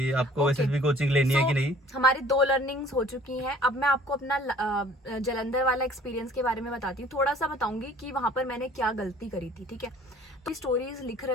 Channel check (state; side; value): normal; both; correlation 0.53